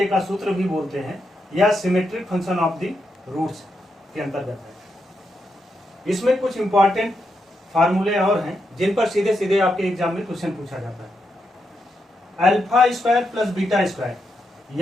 का सूत्र भी बोलते हैं, या symmetric function of the roots के अंतर्गत है। इसमें कुछ इंपॉर्टेंट फार्मूले और हैं जिन पर सीधे सीधे आपके एग्जाम में क्वेश्चन पूछा जाता है। Alpha square plus beta square,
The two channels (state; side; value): normal; both; correlation 0.83